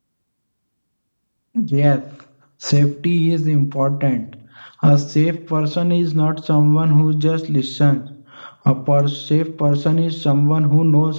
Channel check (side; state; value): both; inverted; correlation -1.00